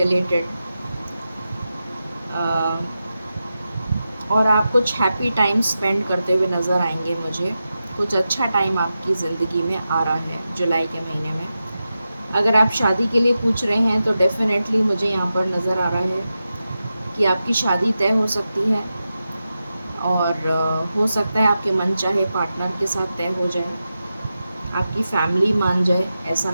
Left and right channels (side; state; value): both; inverted; correlation -0.91